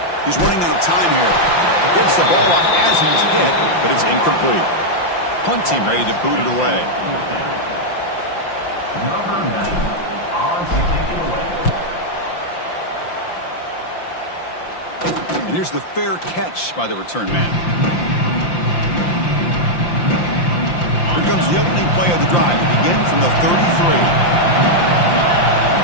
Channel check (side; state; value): right; late; 5.8 ms